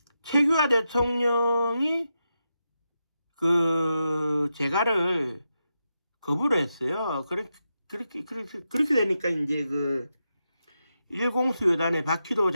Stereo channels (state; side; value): inverted; both; correlation -0.87